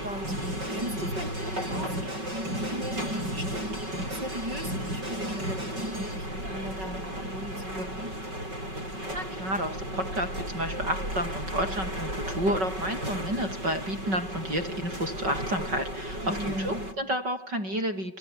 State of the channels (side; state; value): left; late; 5.3 ms